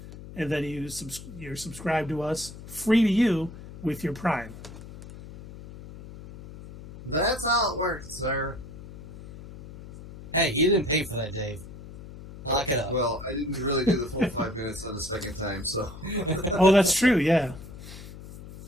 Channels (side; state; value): left; noise; hum, 15 dB below the sound